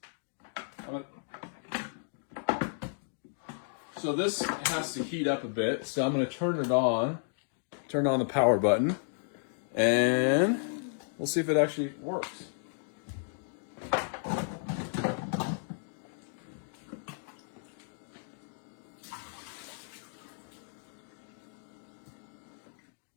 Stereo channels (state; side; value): silent; right; digital silence